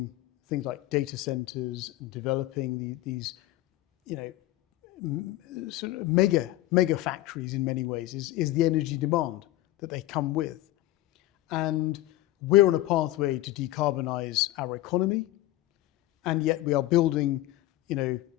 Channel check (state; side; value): quieter; right; 16.0 dB